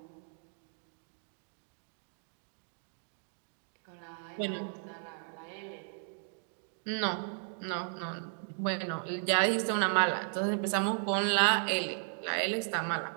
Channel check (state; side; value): silent; left; digital silence